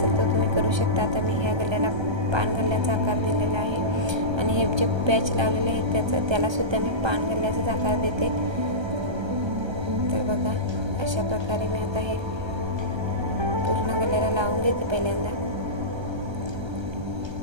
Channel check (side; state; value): left; late; 1.3 ms